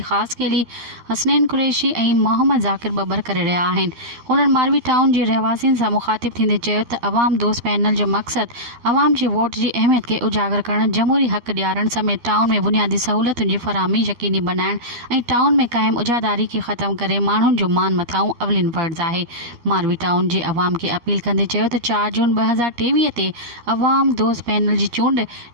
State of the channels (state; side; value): late; left; 13 ms